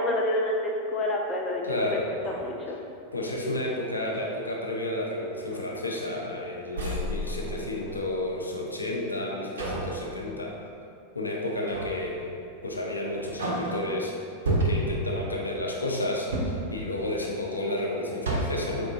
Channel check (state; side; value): normal; both; correlation -0.14